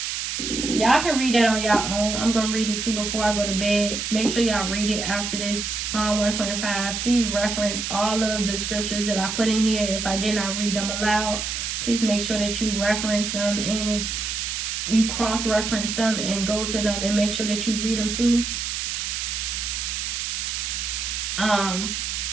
Y'all can read that on y'all own. I'm going to read it too before I go to bed. Make sure y'all read it after this. Psalm 125. Please reference all of the scriptures that I put in here. If I did not read them aloud, please make sure that you reference them and you cross-reference them and go to them and make sure that you read them too.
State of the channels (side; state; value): right; noise; hiss, 3 dB below the sound